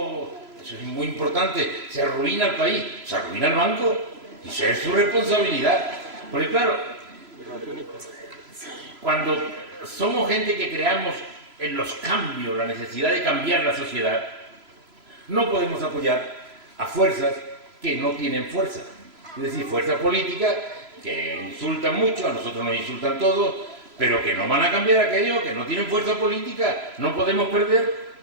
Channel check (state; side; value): late; left; 3.0 ms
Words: eso es muy importante. Se arruina el país, se arruina el banco. Y eso es su responsabilidad. Porque claro, cuando somos gente que creamos en los cambios, la necesidad de cambiar la sociedad, no podemos apoyar a fuerzas que no tienen fuerza. Es decir, fuerzas políticas que insultan mucho, a nosotros nos insultan todos, pero que no van a cambiar aquello, que no tienen fuerza política. No podemos perder